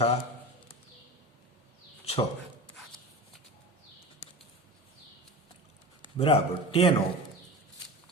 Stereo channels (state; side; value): normal; both; correlation 0.31